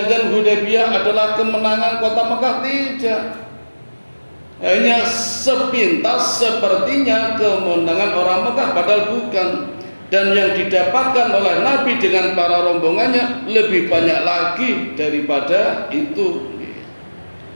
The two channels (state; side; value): inverted; both; correlation -1.00